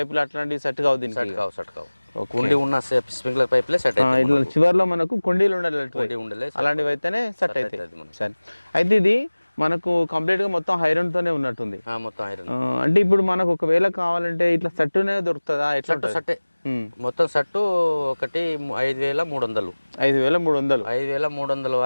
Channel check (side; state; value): both; inverted; correlation -1.00